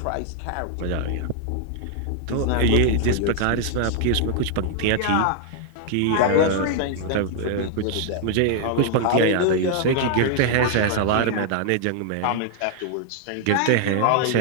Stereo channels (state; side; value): different; both; correlation 0.00